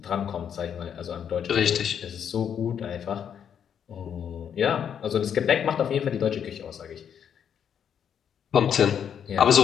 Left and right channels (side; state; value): right; quieter; 8.4 dB